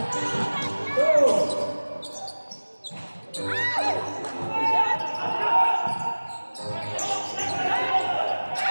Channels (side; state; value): both; inverted; correlation -1.00